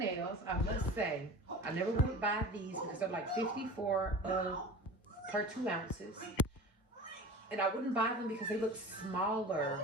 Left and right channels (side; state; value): both; normal; correlation 0.35